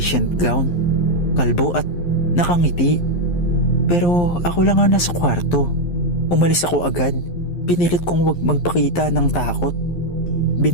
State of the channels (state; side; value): late; right; 11 ms